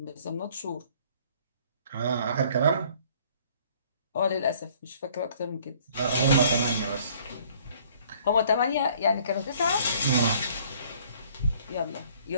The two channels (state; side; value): inverted; both; correlation -0.57